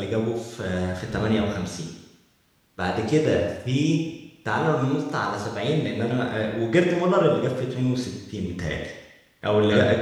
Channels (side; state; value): both; identical; correlation 1.00